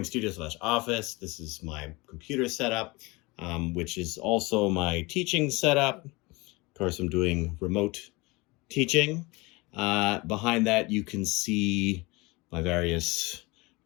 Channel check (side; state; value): right; quieter; 24.4 dB